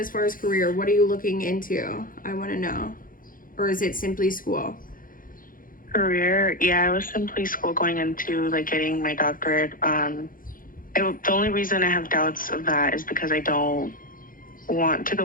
far as career? What are you looking into? I want to know. Or is it simply school? Career, yeah, I was simply school going into like getting my doctorate. The only reason I have doubts of that is because I don't want to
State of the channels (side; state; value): right; late; 0.40 ms